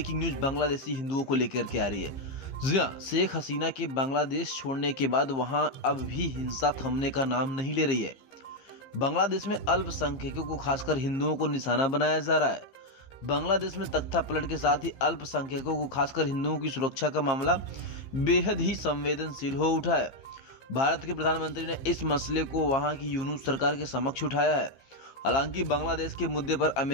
न्यूज बांग्लादेशी हिंदुओं को लेकर के आ रही है। जी हाँ, शेख हसीना के बांग्लादेश छोड़ने के बाद वहां अब भी हिंसा थमने का नाम नहीं ले रही है। बांग्लादेश में अल्पसंख्यकों को खासकर हिंदुओं को निशाना बनाया जा रहा है। बांग्लादेश में तख्ता पलट के साथ ही अल्पसंख्यकों को खासकर हिंदुओं की सुरक्षा का मामला बेहद ही संवेदनशील हो उठा है। भारत के प्रधानमंत्री ने इस मसले को वहां की यूनूस सरकार के समक्ष उठाया है। हालांकि बांग्लादेश के मुद्दे पर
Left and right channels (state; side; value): late; right; 15 ms